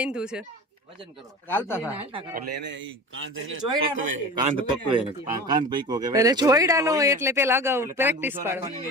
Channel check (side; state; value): both; normal; correlation 0.34